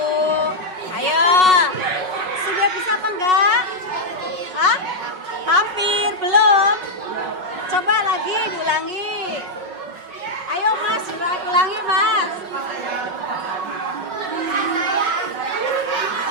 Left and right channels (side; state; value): left; late; 5.4 ms